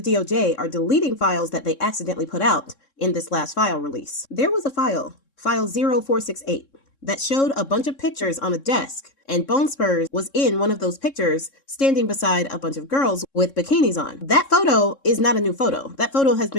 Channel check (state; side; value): late; right; 3.6 ms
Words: are deleting files that they accidentally put out in this last file release. There was a file 0468, that showed a bunch of pictures on a desk, and Bone Spurs was in one of those pictures standing beside a bunch of girls with bikinis on. That photo is not a new photo. That photo has